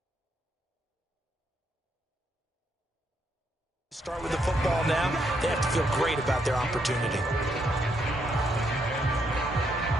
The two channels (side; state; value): both; normal; correlation 0.76